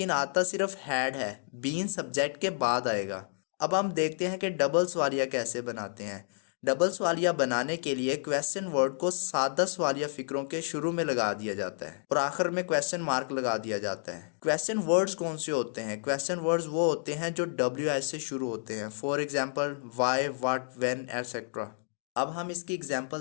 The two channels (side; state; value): right; silent; digital silence